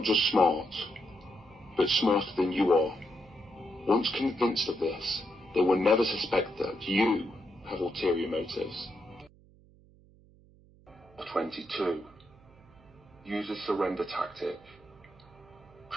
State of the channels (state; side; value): noise; right; hum, 26 dB below the sound